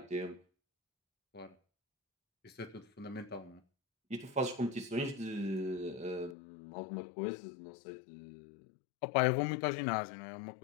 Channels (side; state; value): right; drops out; at 6.4 s